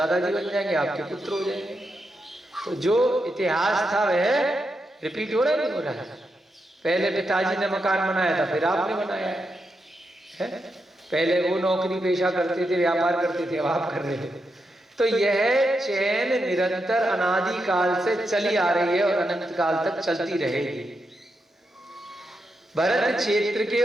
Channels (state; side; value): normal; both; correlation 0.85